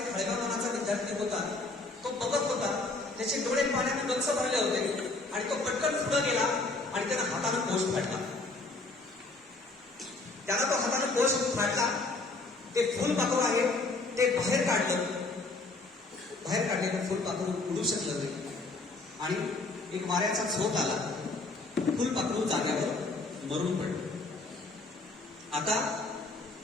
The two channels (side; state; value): right; quieter; 3.3 dB